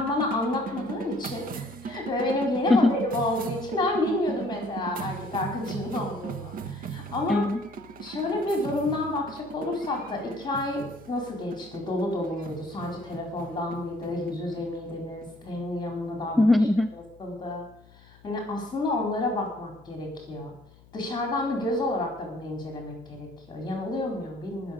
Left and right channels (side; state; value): left; noise; hum, 25 dB below the sound